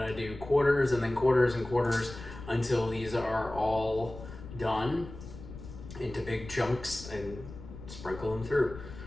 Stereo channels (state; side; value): noise; left; rumble, 13 dB below the sound